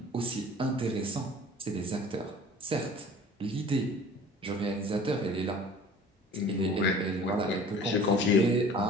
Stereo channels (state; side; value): normal; both; correlation 0.46